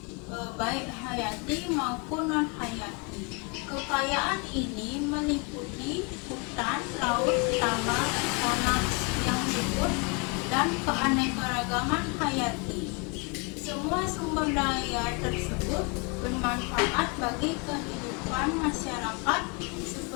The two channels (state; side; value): quieter; right; 31.9 dB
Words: baik hayati maupun non hayati. Kekayaan ini meliputi hutan, laut, tambang, tanah yang subur, dan keanekaragaman hayati. Semua sumber daya tersebut bermanfaat bagi kehidupan masyarakat